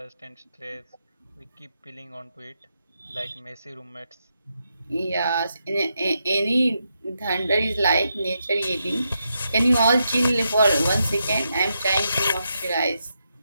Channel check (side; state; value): both; inverted; correlation -0.84